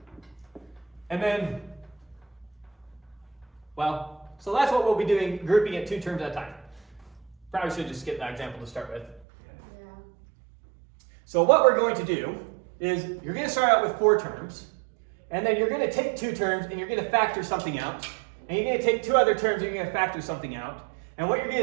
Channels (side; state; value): left; drops out; at 9.2 s